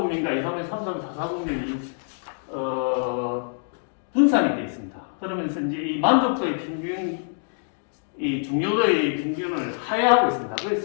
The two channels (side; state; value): right; silent; digital silence